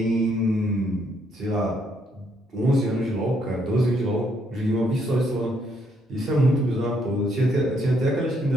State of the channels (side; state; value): both; normal; correlation 0.72